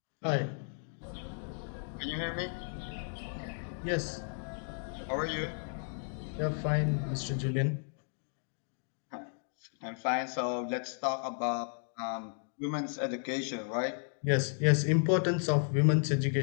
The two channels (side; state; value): right; silent; 55 dB below the other